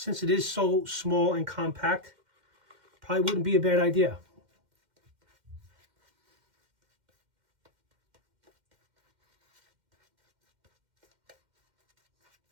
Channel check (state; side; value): late; left; 2.1 ms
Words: it is so small and compact, probably wouldn't be a bad idea.